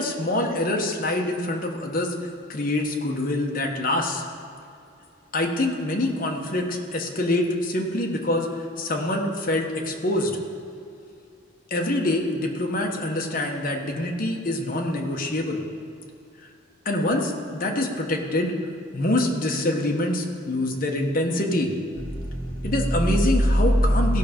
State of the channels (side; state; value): both; normal; correlation 0.53